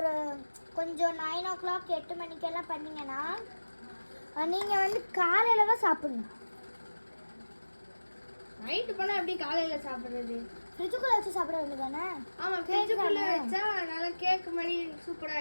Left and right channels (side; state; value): both; inverted; correlation -1.00